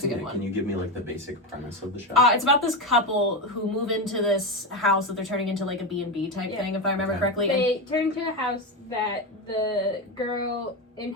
seen good it. one. Can you give me like the basic premise of the show? It's about this couple who move into this house that they're turning into like a B&B type thing, if I remember correctly. They turn into a house that the girl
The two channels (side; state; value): both; normal; correlation 0.14